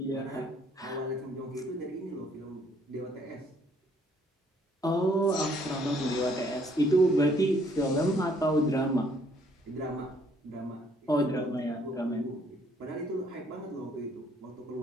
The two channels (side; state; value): both; normal; correlation 0.65